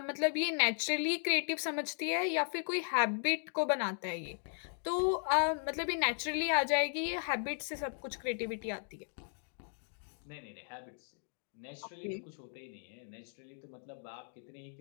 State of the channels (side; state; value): right; silent; 54 dB below the other